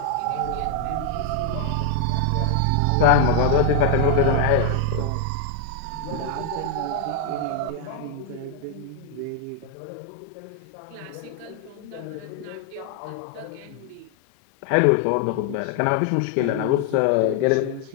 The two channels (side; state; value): both; different; correlation 0.00